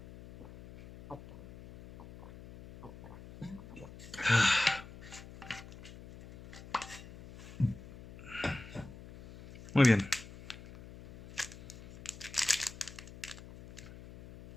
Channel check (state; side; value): noise; left; hum, 16 dB below the sound